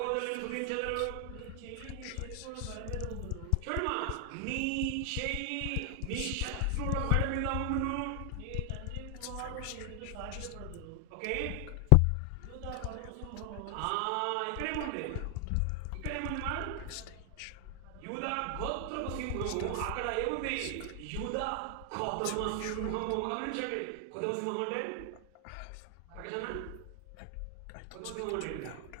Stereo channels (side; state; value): both; different; correlation 0.00